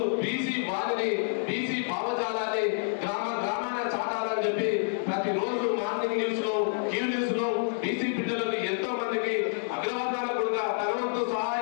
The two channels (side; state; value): right; silent; 59 dB below the other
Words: బీసీ వారిని బీసీ భావజాలాన్ని గ్రామాన చాటాలని చెప్పి ప్రతిరోజు మార్నింగ్ న్యూస్ లో క్యూ న్యూస్ లో బీసీ బిడ్డలకు ఎంతో మందికి అగ్రవర్ణాల కూడా తనవంతు